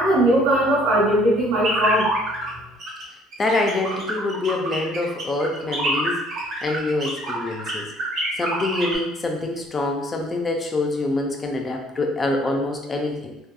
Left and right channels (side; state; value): both; normal; correlation 0.60